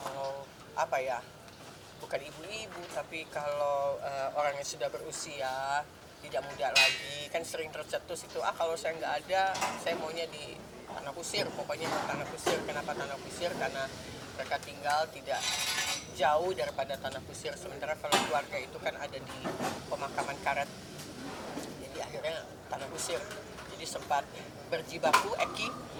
apa ya, bukan ibu-ibu, tapi kalau orang yang sudah berusia tidak muda lagi kan sering tercetus itu, kalau saya nggak ada saya maunya di Tanah Kusir. Pokoknya Tanah Kusir. Kenapa Tanah Kusir? Karena mereka tinggal tidak jauh daripada Tanah Kusir, sementara kalau keluarga itu kan ada di pemakaman karet. Jadi akhirnya Tanah Kusir. Jadi sempat berjibaku Eki,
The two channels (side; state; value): both; identical; correlation 1.00